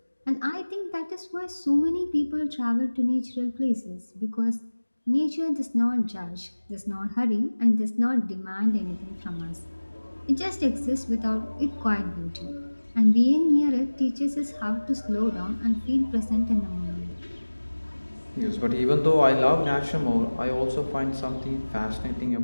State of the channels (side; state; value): both; inverted; correlation -1.00